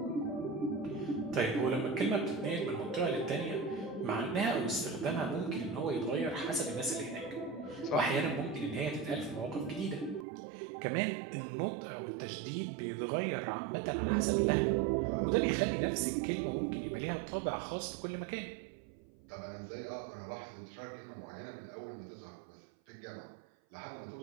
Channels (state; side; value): drops out; left; at 10.2 s